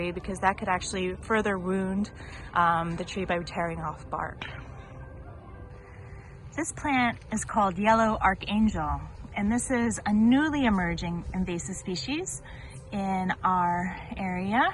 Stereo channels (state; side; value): identical; both; correlation 1.00